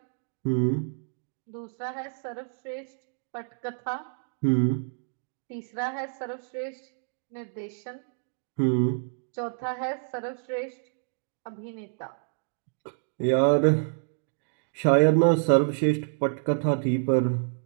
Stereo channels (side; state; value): left; silent; digital silence